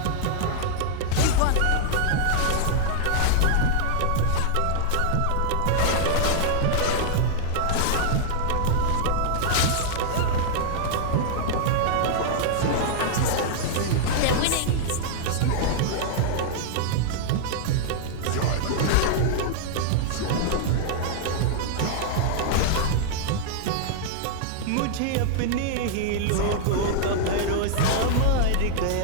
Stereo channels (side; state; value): both; different; correlation -0.01